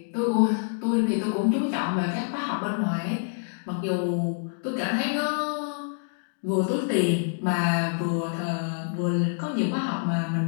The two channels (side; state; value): right; silent; digital silence